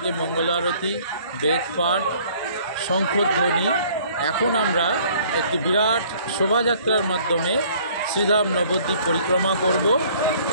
মঙ্গল আরতি, বেদপাঠ, শঙ্খধ্বনি। এখন আমরা একটি বিরাট শোভাযাত্রার মাধ্যমে শ্রীধাম নবদ্বীপ পরিক্রমা করব।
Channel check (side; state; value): both; inverted; correlation -0.56